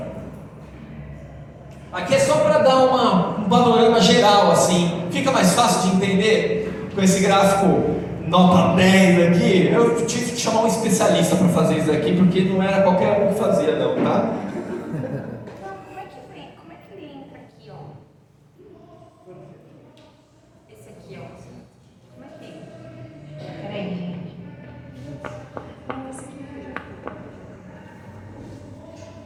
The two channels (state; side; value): identical; both; correlation 1.00